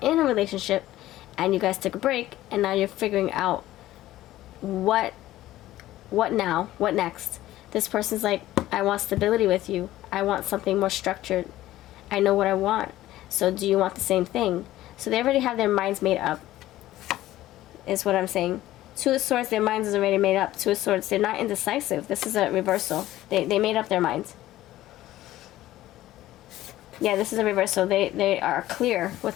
a relationship and you guys took a break and now you're figuring out what now, what next? This person's like, I want stability with you. I want something more structured. I know what I want. So do you want the same thing? So they already have their minds made up, is what I'm saying. Two of Swords, their minds is already made up. Two of Swords, they're not indecisive. This is a reversal. They made up their minds. Yeah, this is a reversal. They are clear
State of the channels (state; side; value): quieter; right; 15.0 dB